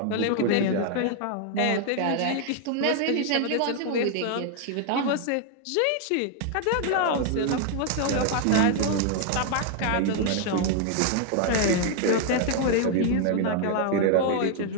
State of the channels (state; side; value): different; both; correlation 0.00